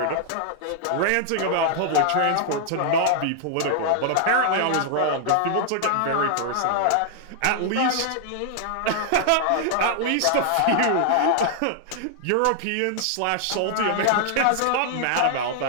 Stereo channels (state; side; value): different; both; correlation 0.00